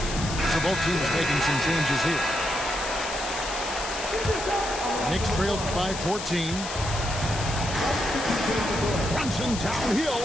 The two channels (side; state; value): left; noise; hiss, 8 dB below the sound